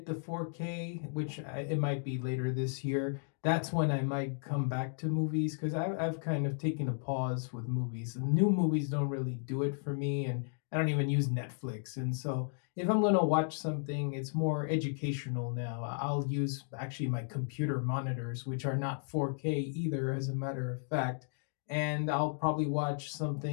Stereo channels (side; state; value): right; silent; digital silence